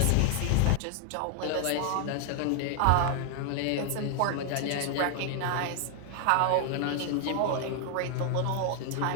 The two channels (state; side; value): different; both; correlation 0.00